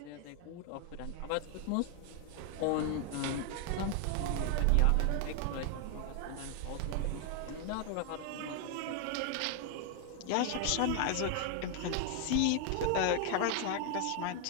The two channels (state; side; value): different; both; correlation 0.00